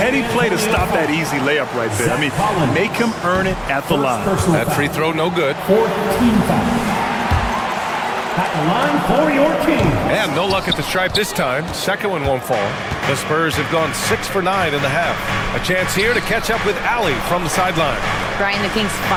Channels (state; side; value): identical; both; correlation 1.00